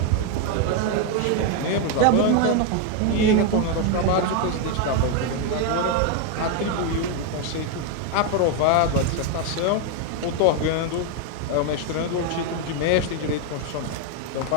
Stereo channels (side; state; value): both; different; correlation 0.01